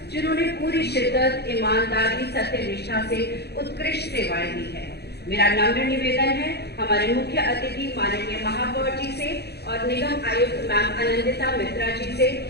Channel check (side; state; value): right; late; 0.48 ms